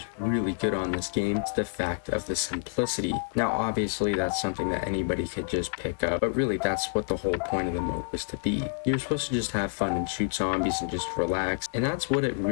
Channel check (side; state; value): right; silent; digital silence